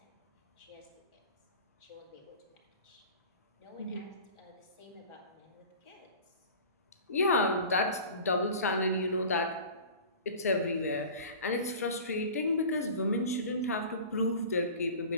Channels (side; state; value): both; inverted; correlation -0.39